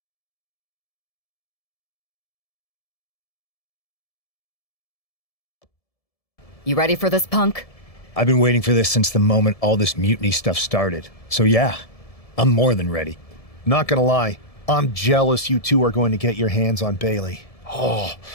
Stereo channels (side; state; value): right; late; 1.7 ms